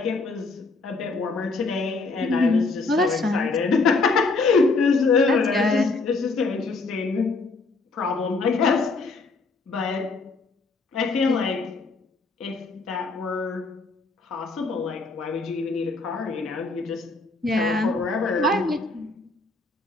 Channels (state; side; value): quieter; right; 3.8 dB